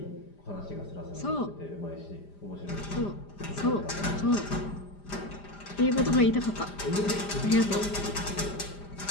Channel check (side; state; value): right; late; 5.0 ms